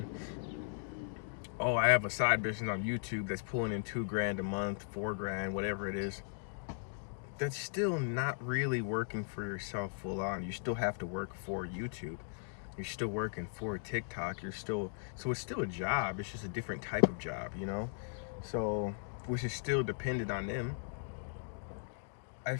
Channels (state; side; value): silent; right; digital silence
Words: oh, I have a side business on YouTube that's pulling in $2,000 a month, $4,000, whatever it is. That's still not really working for yourself full on. You still have to work for YouTube. You're still working for TikTok. So it's still a job. It's just a different type of job, you know? So, which is still dependent on them. I